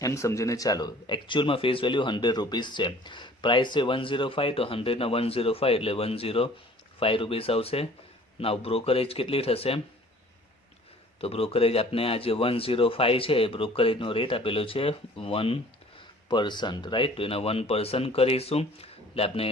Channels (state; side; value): normal; both; correlation 0.51